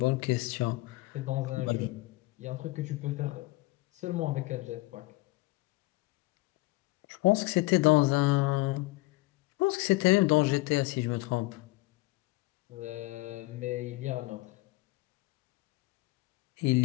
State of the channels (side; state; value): right; quieter; 21.1 dB